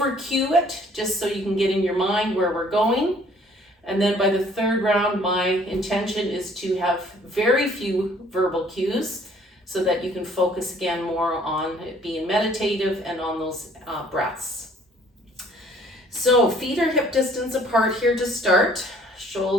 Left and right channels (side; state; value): both; normal; correlation 0.58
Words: cue it, just so you can get in your mind where we're going. And then by the third round, my intention is to have very few verbal cues so that you can focus again more on it being meditative and on those breaths. So feet are hip distance apart here to start.